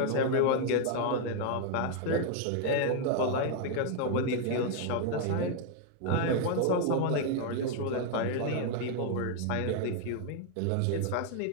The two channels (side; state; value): both; different; correlation 0.00